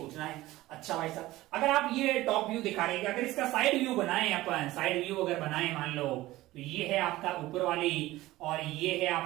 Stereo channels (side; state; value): left; quieter; 17.4 dB